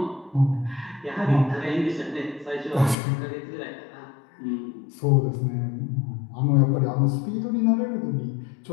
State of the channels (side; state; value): right; drops out; at 3.0 s